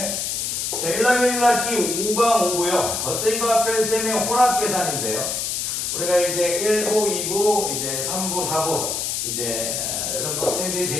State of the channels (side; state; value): left; noise; hiss, 1 dB below the sound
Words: 자, 1학년 1학기 5강 5부요. 덧셈과 뺄셈의 혼합계산인데요. 우리가 이제 1부, 2부, 이제 3부, 4부, 이제 여러분 학생들이